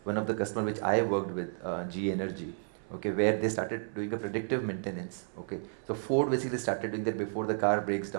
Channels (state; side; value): silent; left; 56 dB below the other